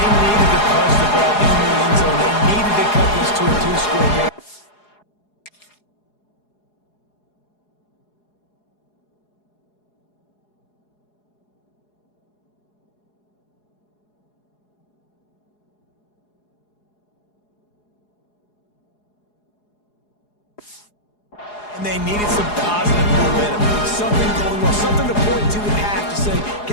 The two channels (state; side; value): late; right; 4.8 ms